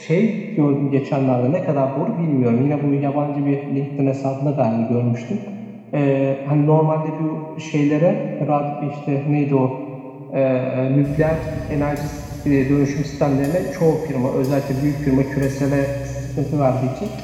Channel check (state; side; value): identical; both; correlation 1.00